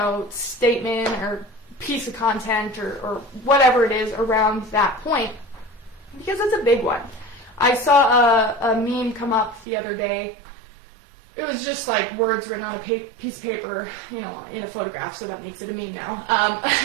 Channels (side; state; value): left; drops out; at 9.7 s